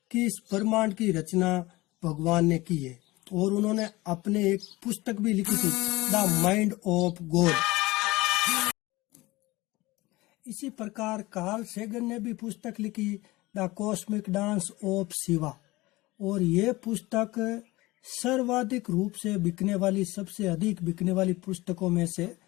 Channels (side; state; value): right; quieter; 20.5 dB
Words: कि इस ब्रह्मांड की रचना भगवान ने की है, और उन्होंने अपने एक पुस्तक भी लिखी थी, द माइंड ऑफ गॉड। इसी प्रकार कार्ल सेगन ने भी पुस्तक लिखी, the cosmic dance of Shiva, और ये पुस्तक सर्वाधिक रूप से बिकने वाली, सबसे अधिक बिकने वाली पुस्तकों में से